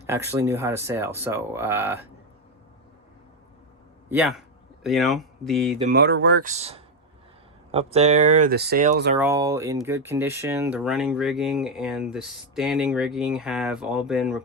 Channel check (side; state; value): both; normal; correlation 0.05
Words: actually knew how to sail. So yeah, you know, the motor works up there, the sails are all in good condition, the running rigging and the standing rigging have all been